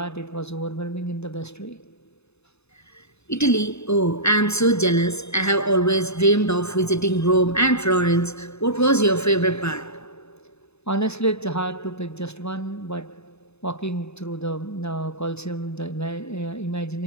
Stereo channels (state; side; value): late; right; 0.80 ms